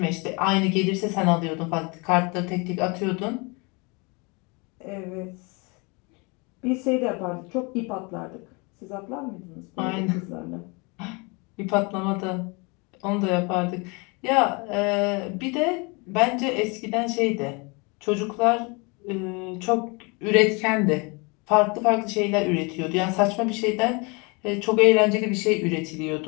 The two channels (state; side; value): quieter; right; 29.6 dB